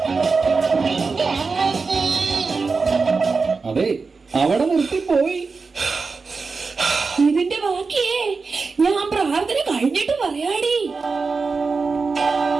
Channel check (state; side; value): quieter; left; 4.5 dB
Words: അതെ, അവിടെ നിർത്തിപ്പോയി. ഇതിന്റെ ബാക്കിയേ ഞാൻ പ്രാർത്ഥന കഴിഞ്ഞിട്ട് പറയാടി.